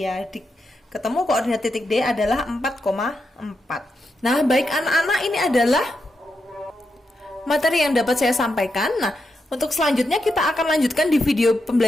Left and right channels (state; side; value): normal; both; correlation 0.85